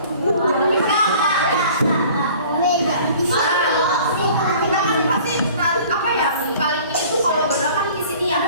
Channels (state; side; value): inverted; both; correlation -0.48